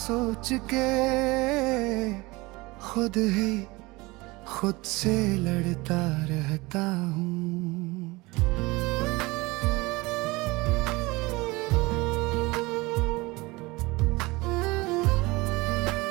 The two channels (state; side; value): quieter; left; 22.7 dB